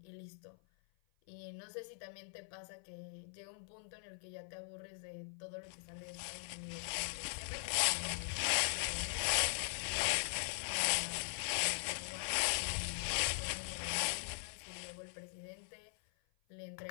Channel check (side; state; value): right; silent; 50 dB below the other